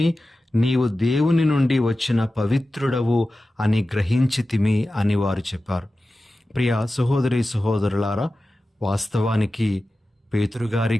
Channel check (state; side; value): normal; both; correlation 0.94